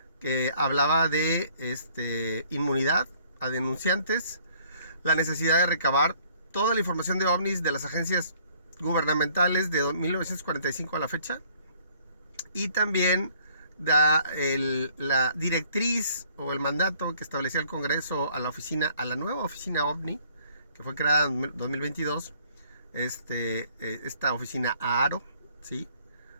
que hablaba de inmunidad a denunciantes, la necesidad de recabar toda la información de ovnis de las agencias gubernamentales de 1945 a la fecha, y también da la directriz o el mandato que establecía el Congreso a la nueva oficina OVNI, que fue creada en 2022, esta oficina AARO, ¿sí?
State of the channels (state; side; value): inverted; both; correlation -0.61